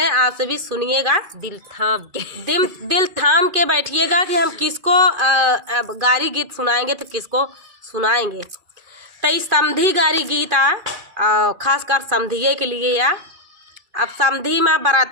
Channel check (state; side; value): late; left; 2.3 ms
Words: आप सभी सुनिएगा दिल थाम के बैठिएगा कि हम किसको गारी गीत सुनाएंगे तो किसको सुनाएंगे। तई समधी गारी गीत खासकर समधिये के लिए या अब समधी में